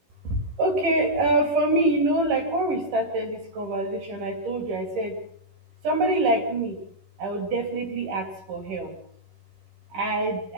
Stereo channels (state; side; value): late; left; 11 ms